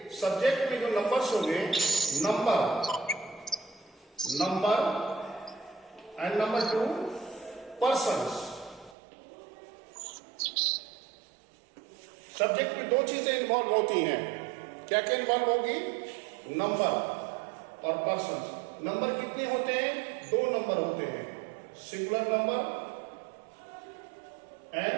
सब्जेक्ट में जो नंबर्स होंगे, number and number 2 persons. Subject में दो चीजें इन्वॉल्व होती हैं. क्या क्या इन्वॉल्व होगी? नंबर और पर्सन्स. नंबर कितने होते हैं? 2 नंबर होते हैं, singular number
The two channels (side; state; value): left; drops out; at 9.0 s